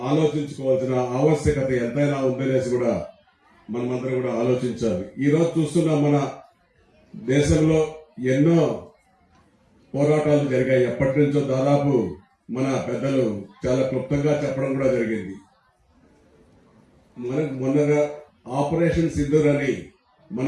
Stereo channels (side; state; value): both; identical; correlation 1.00